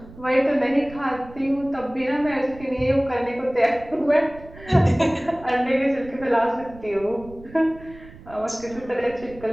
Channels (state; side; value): noise; right; rumble, 19 dB below the sound